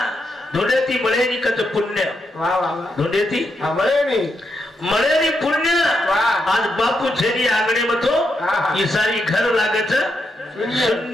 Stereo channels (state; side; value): normal; both; correlation 0.82